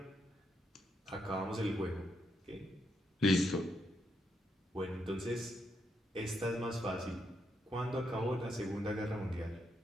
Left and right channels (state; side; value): normal; both; correlation 0.79